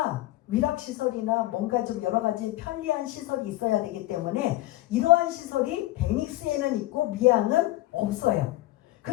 위락시설이나 뭔가 좀 여러 가지 편리한 시설이 있어야 되기 때문에 이러한 시설이 베닉스에는 있고 미항은 없어요.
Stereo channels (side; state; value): right; quieter; 17.3 dB